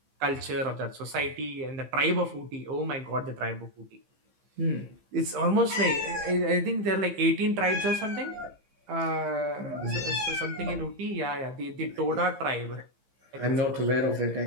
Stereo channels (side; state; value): left; late; 15 ms